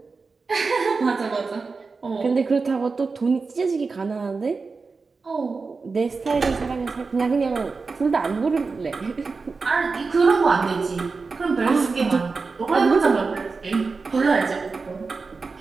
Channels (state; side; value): quieter; left; 4.4 dB